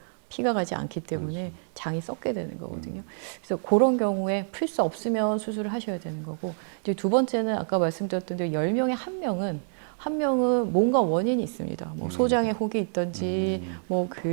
피가 가지 않기 때문에 그렇죠. 장이 썩게 되는 거거든요. 그래서 그런 경우에 풀 수 없으면 수술을 하셔야 되는 거고, 이제 두 번째는 아까 말씀드렸던 대로 10명에 한 명은 뭔가 원인이 있습니다. 뭐 소장에 혹이 있든지, 뭐 그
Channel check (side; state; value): left; silent; digital silence